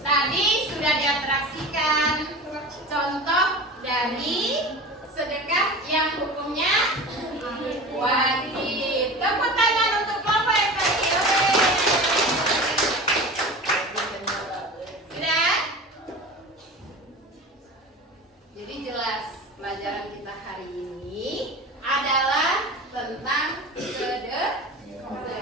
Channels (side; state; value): both; normal; correlation 0.33